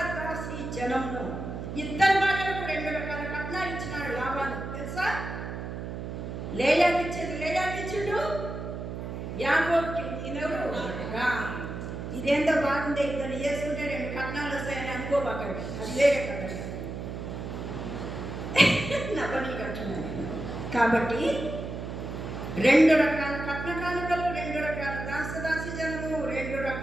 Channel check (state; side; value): noise; right; hum, 6 dB below the sound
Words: జనమును ఇద్దరు భార్యలకు 2 రకాల కట్నాలు ఇచ్చినాడు లాభాలు. తెలుసా? లేయాకి ఇచ్చేది లేయాకి ఇచ్చిండు, యాకోబుకి ఈయనెవరు? ఇదేందో బాగుందే, ఇద్దరు చేసుకుంటే 2 కట్నాలు వస్తాయని అనుకోబాకండి, అది వేరే కట్ట. నవ్వని కట్టున్నాను. కాబట్టి 2 రకాల కట్న కానుకలు, 2 రకాల దాసి జనము, 2